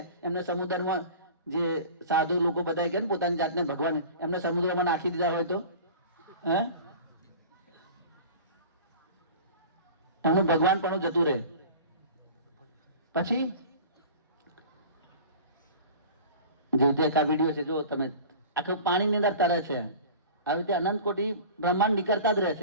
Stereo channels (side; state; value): both; inverted; correlation -0.40